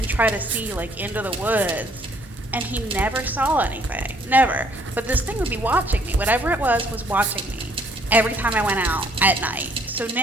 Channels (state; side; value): normal; both; correlation 0.63